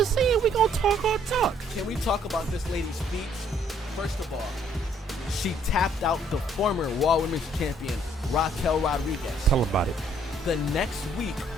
saying we gonna talk our talk. Can we talk about this lady's speech? First of all, she tapped out the former Raw Women's Champion, Raquel Rodriguez. Tell them about it. The next week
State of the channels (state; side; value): normal; both; correlation 0.64